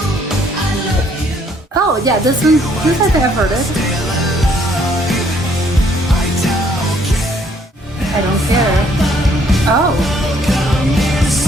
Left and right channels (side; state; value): both; normal; correlation 0.65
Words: Oh yeah, this one. This I think I've heard it. I don't care. Oh.